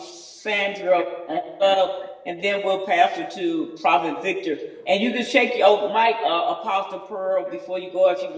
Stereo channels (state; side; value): identical; both; correlation 1.00